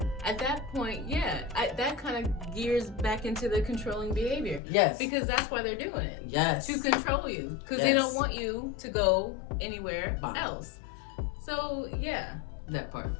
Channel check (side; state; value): right; drops out; at 4.6 s